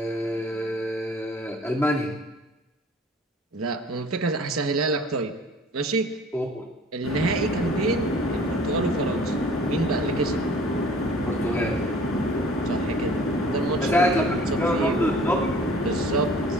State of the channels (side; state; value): both; normal; correlation 0.49